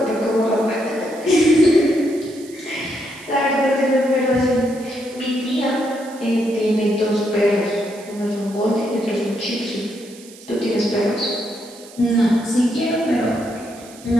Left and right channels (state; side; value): noise; right; hiss, 21 dB below the sound